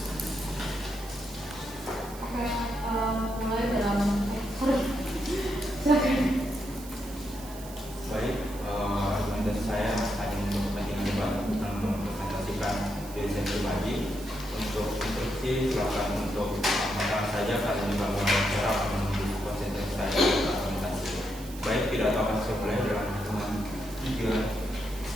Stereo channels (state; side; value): noise; right; hiss, 16 dB below the sound